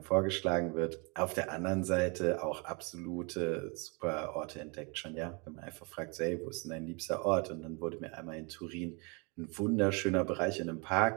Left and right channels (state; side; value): quieter; left; 31.9 dB